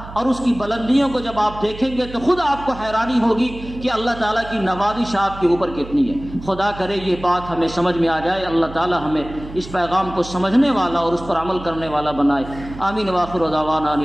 اور اس کی بلندیوں کو جب آپ دیکھیں گے تو خود آپ کو حیرانی ہوگی کہ اللہ تعالیٰ کی نوازش آپ کے اوپر کتنی ہے۔ خدا کرے یہ بات ہمیں سمجھ میں آ جائے، اللہ تعالیٰ ہمیں اس پیغام کو سمجھنے والا اور اس پر عمل کرنے والا بنائے۔ آمین۔ وآخر دعوانا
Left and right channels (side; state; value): right; noise; hum, 14 dB below the sound